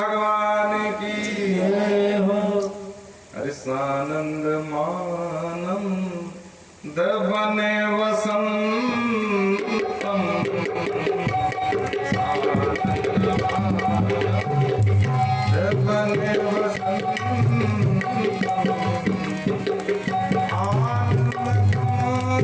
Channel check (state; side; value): identical; both; correlation 1.00